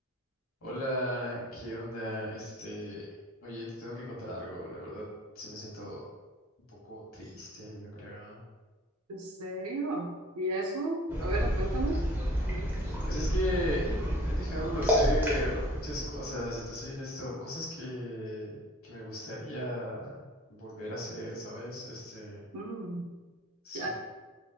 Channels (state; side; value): normal; both; correlation 0.51